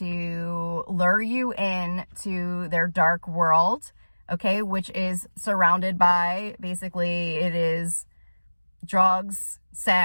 lure you in to their dark world, okay, which is surrounded by, basically, it is drugs,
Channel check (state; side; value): inverted; both; correlation -1.00